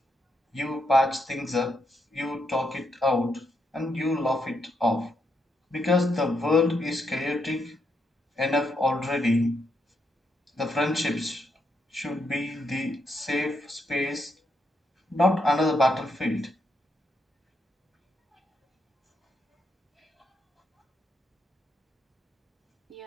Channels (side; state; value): both; normal; correlation 0.79